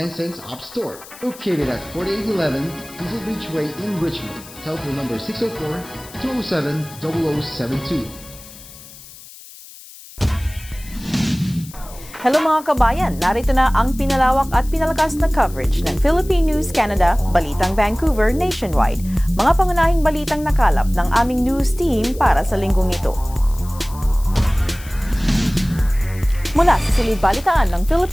cents App Store. Located at 4811 Diesel Beach Way in Richmond. Telephone number 604-207-0072. Hello mga kabayan, narito na ang pinalawak at pinalakas na coverage ng Philippine News Canada, Balitang Vancouver nationwide. Mga pangunahing balitang nakalap ng aming news team para sa linggong ito. Mula sa silid balitaan ng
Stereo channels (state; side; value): noise; left; hiss, 18 dB below the sound